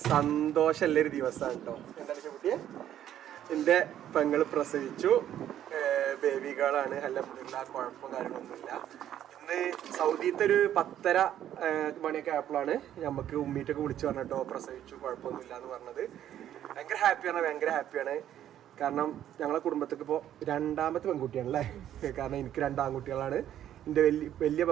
സന്തോഷമുള്ളൊരു ദിവസമാണ് കേട്ടോ. എന്താണ് കുട്ടിയെ, എൻ്റെ പെങ്ങൾ പ്രസവിച്ചു, ബേബി ഗേളാണ്. അൽഹംദുലില്ലാ, കുഴപ്പം കാര്യങ്ങളൊന്നുമില്ല. ഇന്ന് സൗദിയിലത്തെ ഒരു 10:30 മണിയൊക്കെ ആയപ്പോഴാണ് നമുക്ക് ഉമ്മീറ്റൊക്കെ വിളിച്ച് പറഞ്ഞിട്ടോ പ്രസവിച്ചു, കുഴപ്പമൊന്നുമില്ല എന്ന് പറഞ്ഞത്. ഭയങ്കര ഹാപ്പിയാണ്. കാരണം ഞങ്ങളെ കുടുംബത്തേക്ക് ഇപ്പോൾ 2ാമത്തെ പെൺകുട്ടിയാണല്ലേ. കാരണം എനിക്ക് 2 ആൺകുട്ടികളാണ്, എൻ്റെ വലിയ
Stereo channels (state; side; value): quieter; left; 11.2 dB